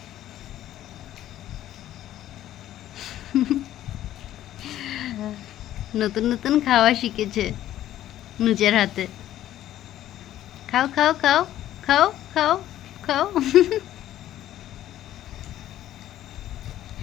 নতুন নতুন খাওয়া শিখেছে নিজের হাতে। খাও খাও খাও, খাও খাও খাও।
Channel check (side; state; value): right; quieter; 12.8 dB